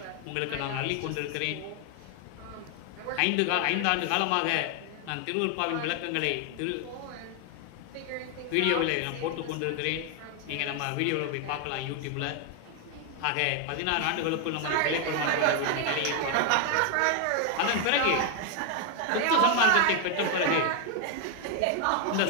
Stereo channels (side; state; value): both; different; correlation 0.00